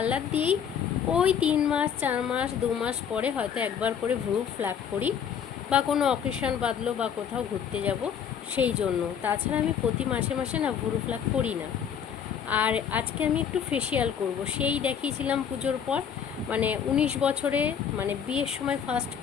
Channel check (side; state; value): right; quieter; 7.9 dB